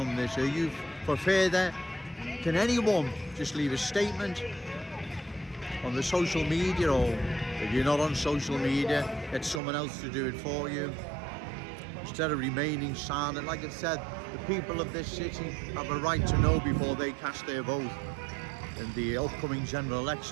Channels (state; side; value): drops out; left; at 9.6 s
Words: this? Are you for further? Can anyone just leave a statement on the social media, or if you're not on social media, get someone else to do it for you instead of remaining silent? Like I said, the people of this city have a right to know before they cast their vote in the upcoming general